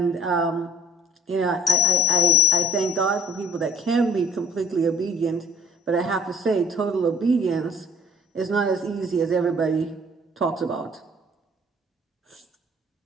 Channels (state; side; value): normal; both; correlation 0.52